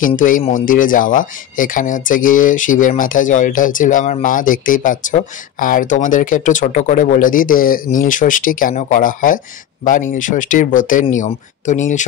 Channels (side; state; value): right; quieter; 10.7 dB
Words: কিন্তু এই মন্দিরে যাওয়া। এখানে হচ্ছে গিয়ে শিবের মাথায় জল ঢালছিল আমার মা, দেখতেই পাচ্ছ। আর তোমাদেরকে একটু ছোট করে বলে দিই যে নীলষষ্ঠী কেন করা হয় বা নীলষষ্ঠীর ব্রতের নিয়ম। তো